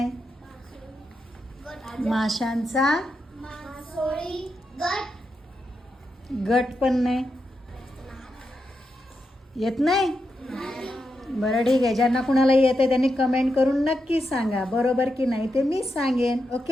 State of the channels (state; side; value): normal; both; correlation 0.85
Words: माशांचा गट पण नाही. येत नाही? बरं ठीक आहे, ज्यांना कुणाला येते त्यांनी कमेंट करून नक्की सांगा बरोबर की नाही ते मी सांगेन.